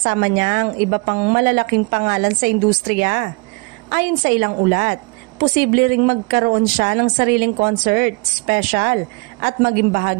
niya ang iba pang malalaking pangalan sa industriya. Ayon sa ilang ulat, posible ring magkaroon siya ng sariling concert, special, at maging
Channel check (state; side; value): quieter; left; 29.9 dB